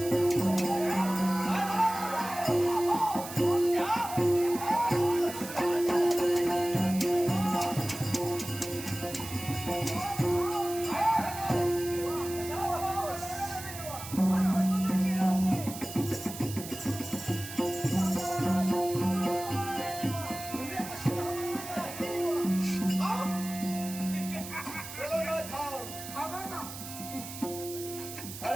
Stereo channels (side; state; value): right; noise; hiss, 11 dB below the sound